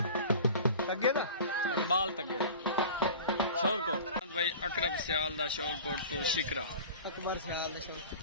इकबाल तगे दा शोरकोट। भाई अकरब सियाल दा शोरकोट तो शिकरा अकबर सियाल दा शोरकोट।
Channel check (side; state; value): both; inverted; correlation -0.38